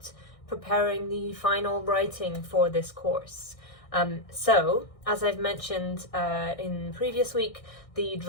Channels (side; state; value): right; late; 1.6 ms